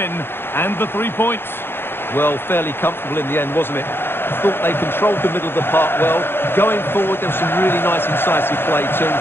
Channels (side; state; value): right; late; 0.11 ms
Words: and the 3 points. Well, fairly comfortable in the end, wasn't it? Thought they controlled the middle of the park well. Going forward, there's some really nice incisive play too.